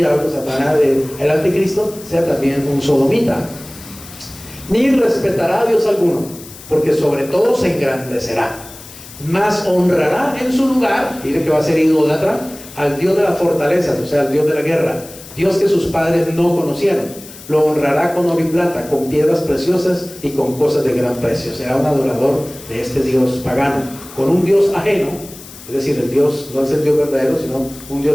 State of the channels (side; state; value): left; noise; hiss, 17 dB below the sound